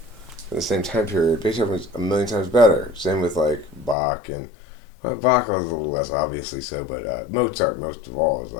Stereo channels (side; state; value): right; drops out; at 4.0 s